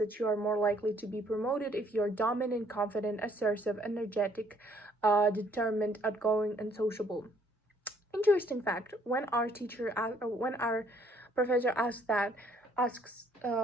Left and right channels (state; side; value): normal; both; correlation 0.64